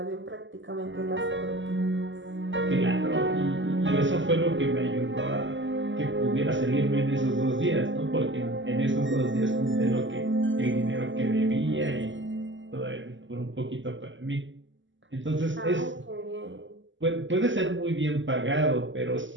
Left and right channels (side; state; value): left; late; 0.55 ms